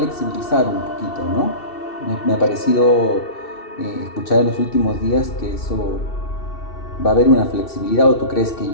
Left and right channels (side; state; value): right; late; 2.7 ms